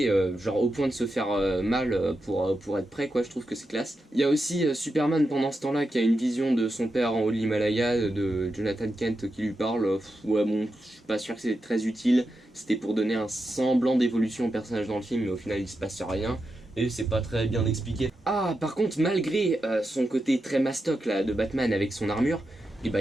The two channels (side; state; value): both; normal; correlation 0.87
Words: genre au point de se faire mal pour être prêt quoi, je trouve que c'est classe. Il y a aussi Superman pendant ce temps-là qui a une vision de son père en haut de l'Himalaya, de Jonathan Kent qui lui parle, ouais bon, je suis pas sûr que c'est très utile, c'était pour donner un semblant d'évolution au personnage dans le film, mais au final il se passe rien. Et c'est pas très bien expliqué. Ah, par contre, malgré son côté très mastoc là de Batman avec son armure, il